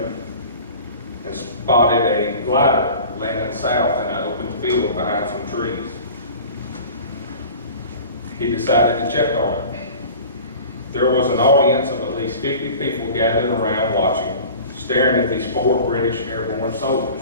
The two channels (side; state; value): both; inverted; correlation -0.41